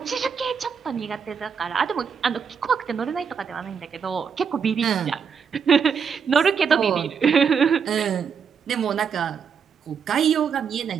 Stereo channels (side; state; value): left; quieter; 6.5 dB